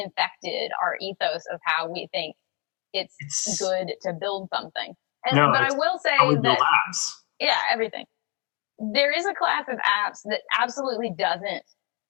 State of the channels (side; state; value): right; quieter; 32.1 dB